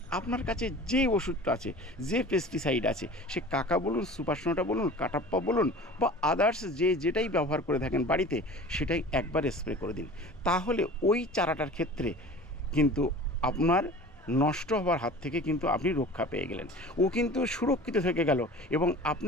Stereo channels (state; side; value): normal; both; correlation 0.40